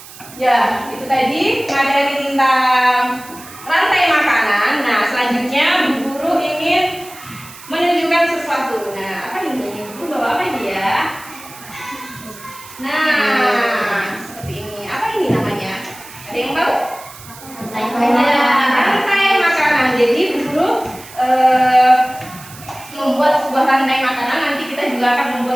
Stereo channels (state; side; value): noise; right; hiss, 18 dB below the sound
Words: Ya, itu tadi materi tentang rantai makanan. Nah, selanjutnya Bu Guru ingin menunjukkan sesuatu. Nah, apa ini? Bu Guru bawa apa ini ya? Nah, seperti ini. Apa ini namanya? Ada yang tahu? Rantai makanan. Jadi Bu Guru membuat sebuah rantai makanan. Nanti kita juga akan